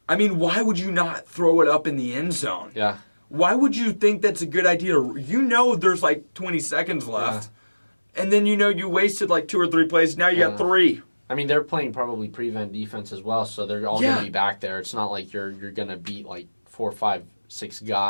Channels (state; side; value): inverted; both; correlation -1.00